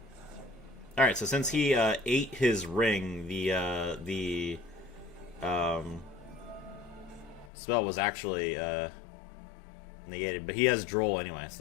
Alright, so since he ate his ring, the spell was actually... negated, but he has Droll anyway,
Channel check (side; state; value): right; drops out; at 7.5 s